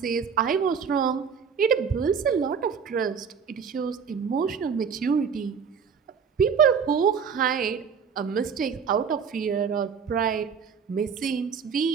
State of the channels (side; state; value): left; quieter; 6.5 dB